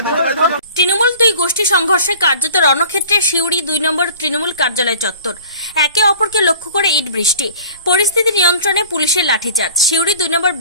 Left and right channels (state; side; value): inverted; both; correlation -0.46